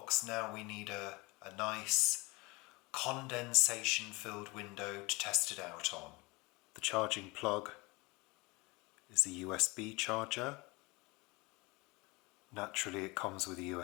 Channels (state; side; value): quieter; right; 25.0 dB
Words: Now we need a nice condensation filled window to test it out on. The charging plug is a USB charger. Naturally it comes with a